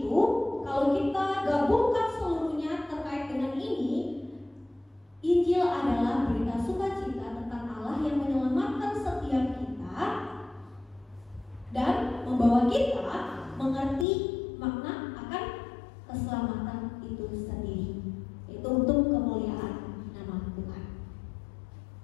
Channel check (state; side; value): drops out; right; at 14.1 s